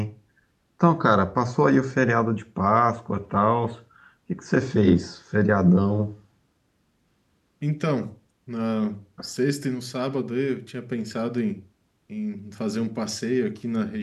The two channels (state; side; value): identical; both; correlation 1.00